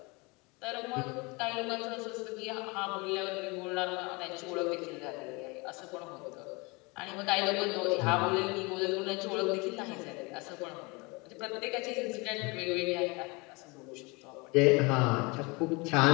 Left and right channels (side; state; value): right; quieter; 27.3 dB